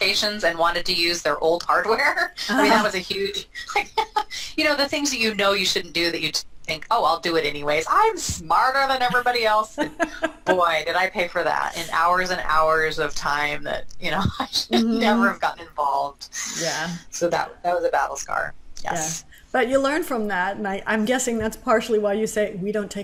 and wanted to use their old hardware. I mean, that was a huge, you know, the things that you know you shouldn't do that you think, oh, I'll do it anyways. I'm smarter than everybody else. And boy, did I pay for that in hours and hours of time that, you know, I should never have gotten involved. Yeah. So that was a battle scar. Yes. Yeah. But you learn from that, and I'm guessing that's partially why you say we don't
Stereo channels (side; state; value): both; identical; correlation 1.00